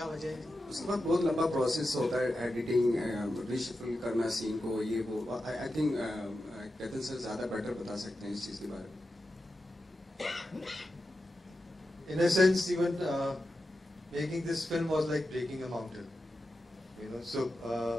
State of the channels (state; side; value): normal; both; correlation 0.90